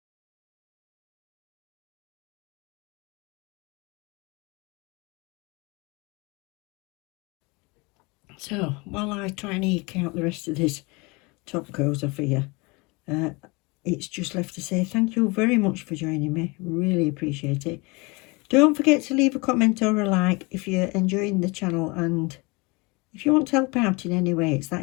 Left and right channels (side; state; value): right; quieter; 26.9 dB